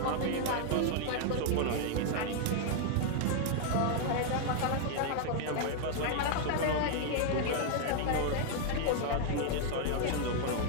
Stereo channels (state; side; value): different; both; correlation 0.00